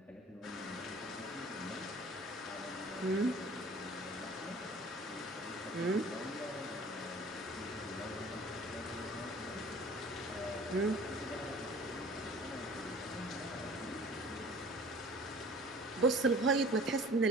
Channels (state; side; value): normal; both; correlation 0.46